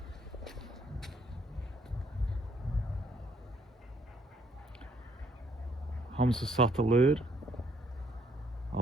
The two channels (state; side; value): normal; both; correlation 0.67